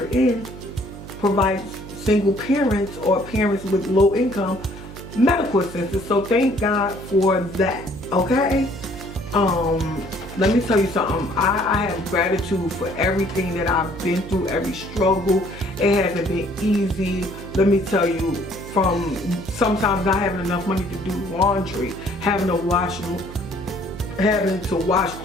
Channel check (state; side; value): noise; right; hum, 14 dB below the sound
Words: in provides single parents or parents with low income medical assistance. So thank God for that, okay? Let me tell you something. I have gratitude for everything that I've been through, every struggle. It hasn't been easy. Let me tell you, from sometimes not having enough money to do laundry, having to wash